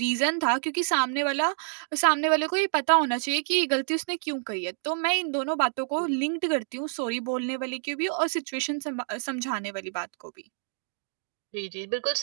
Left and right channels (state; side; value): silent; left; digital silence